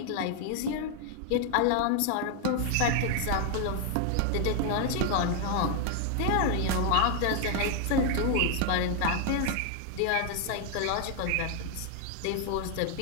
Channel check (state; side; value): different; both; correlation 0.01